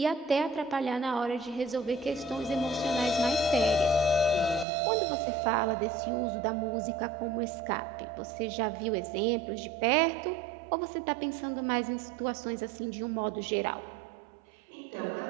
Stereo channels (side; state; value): left; drops out; at 4.7 s